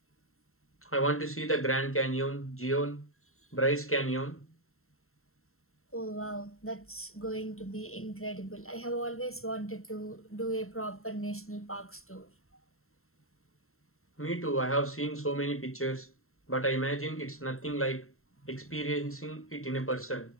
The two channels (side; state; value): right; late; 0.62 ms